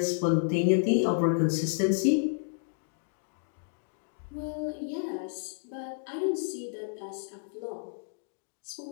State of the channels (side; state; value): right; silent; digital silence